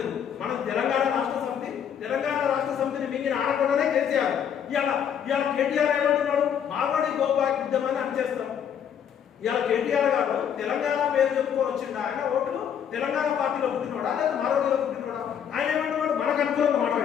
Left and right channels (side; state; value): right; quieter; 8.5 dB